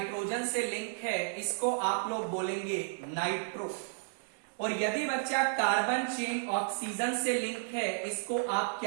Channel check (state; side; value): silent; left; digital silence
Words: से लिंक है, इसको आप लोग बोलेंगे नाइट्रो। और यदि बच्चा कार्बन चेन ऑक्सीजन से लिंक है, इसको आप